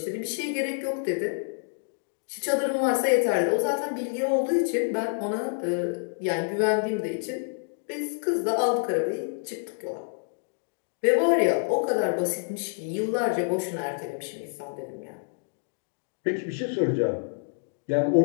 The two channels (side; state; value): right; silent; digital silence